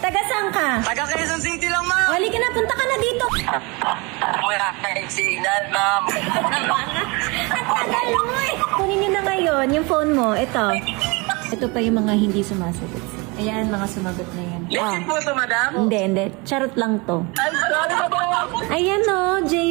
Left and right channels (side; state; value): left; quieter; 27.5 dB